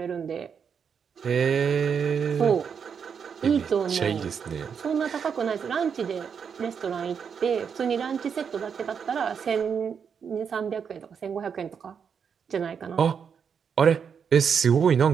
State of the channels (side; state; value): left; quieter; 6.9 dB